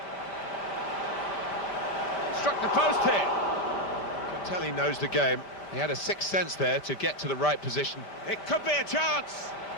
Struck the post here. Tell he knows the game. He had a sixth sense there to get to the right position. It could be a chance.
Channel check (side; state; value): right; late; 5.1 ms